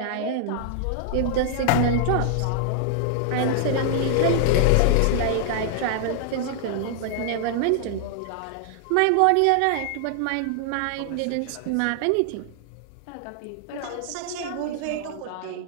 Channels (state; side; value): different; both; correlation -0.01